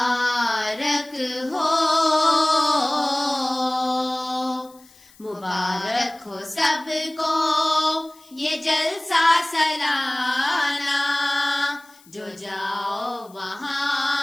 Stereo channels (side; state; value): left; noise; hiss, 27 dB below the sound